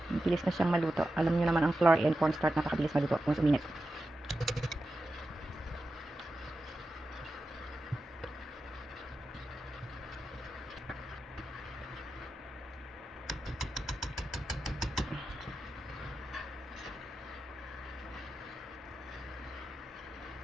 Bilis na siyang maluto. Alam niyo naman ang flour and cornstarch napakabilis maluto kung uminit.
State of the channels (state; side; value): normal; both; correlation 0.91